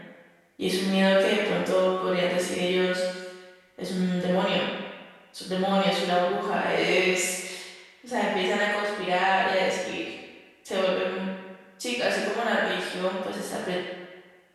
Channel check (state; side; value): identical; both; correlation 1.00